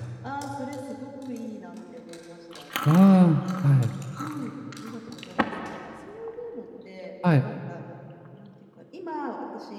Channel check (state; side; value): identical; both; correlation 1.00